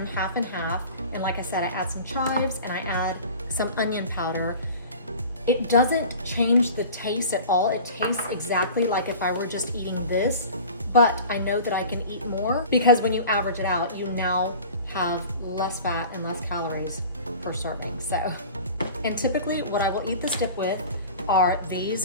half and half, and like I said, I add some chives and I add some onion powder, it doesn't change the taste at all. It tastes exactly like if I were just eating this, but I know that I can eat more because when you average it out, you now have less fat and less calories per serving. So, and typically what I will eat this dip with are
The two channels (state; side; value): inverted; both; correlation -0.40